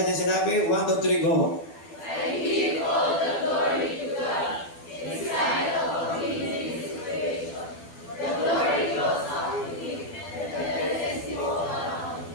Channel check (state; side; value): late; right; 12 ms